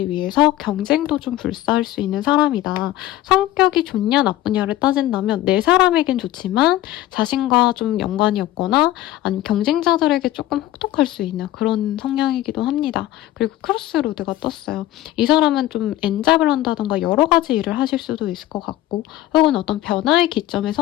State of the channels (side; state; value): right; quieter; 14.7 dB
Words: 위해서 경쟁도 좀 불사할 수 있는 사람이다. 성격이 좋냐 나쁘냐를 따진다면 내 사람에겐 좋지만 자신과 좀 연관이 없거나 아니면 경쟁자들에게 조금 혹독할 수 있는 그런 성향이기도 합니다. 그리고 크로스로드가 떴어요. 이 사람은 좀 엔잡을 한다던가 여러 가지 일을 하실 수도 있을 것 같고 혹은 어떤 변화의 기점에